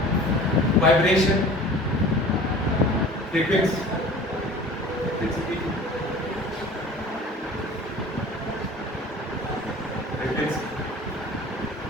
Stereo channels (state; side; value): normal; both; correlation 0.43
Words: Vibration. Frequency. Frequency.